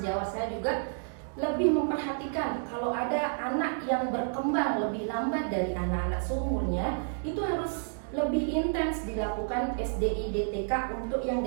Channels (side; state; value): left; silent; digital silence